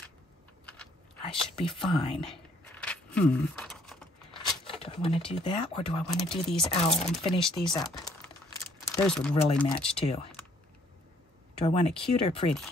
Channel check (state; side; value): normal; both; correlation 0.64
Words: I should be fine. Do I want to do that, or do I want to do these owl and finish these up? Those would really match too. Do I want it cute or pretty?